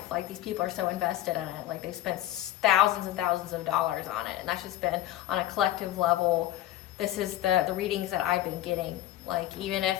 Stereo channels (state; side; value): quieter; right; 13.9 dB